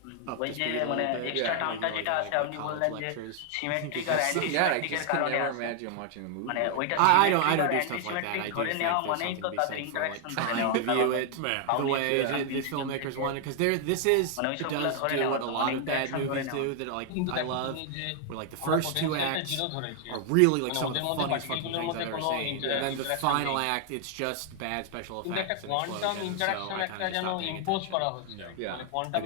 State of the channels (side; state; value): both; different; correlation 0.00